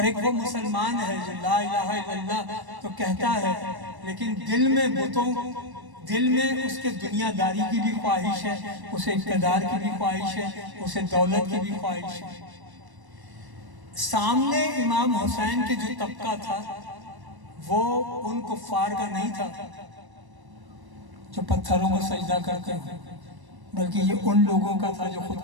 ایک وہ مسلمان ہے جو لا الہ الا اللہ تو کہتا ہے لیکن دل میں بتوں، دل میں اس کے دنیا داری کی بھی خواہش ہے، اسے اقتدار کی بھی خواہش ہے، اسے دولت کی بھی خواہش ہے۔ سامنے امام حسین کے جو طبقہ تھا وہ ان کفار کا نہیں تھا جو پتھروں کو سجدہ کرتے ہیں، بلکہ یہ ان لوگوں کا تھا جو خود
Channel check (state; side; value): late; left; 1.1 ms